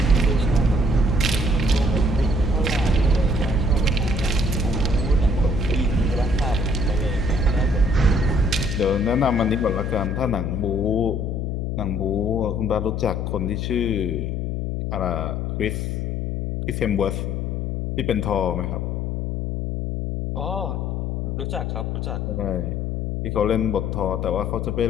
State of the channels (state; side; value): noise; left; hum, 1 dB below the sound